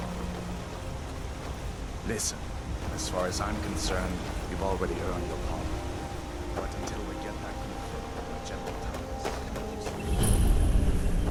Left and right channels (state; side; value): identical; both; correlation 1.00